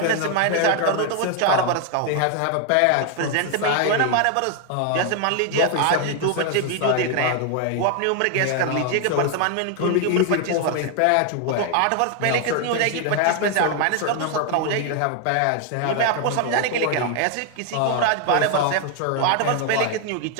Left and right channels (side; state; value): both; different; correlation 0.00